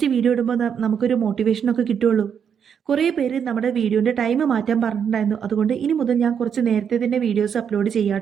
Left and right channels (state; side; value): quieter; left; 7.6 dB